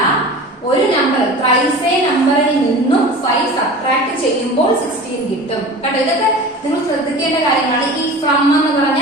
ഒരു നമ്പർ thrice a നമ്പറിൽ നിന്നും 5 സബ്ട്രാക്ട് ചെയ്യുമ്പോൾ 16 കിട്ടും. കേട്ടോ, ഇതൊക്കെ നിങ്ങൾ ശ്രദ്ധിക്കേണ്ട കാര്യങ്ങളാണ്. ഈ ഫ്രം എന്ന്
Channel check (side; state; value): both; normal; correlation 0.37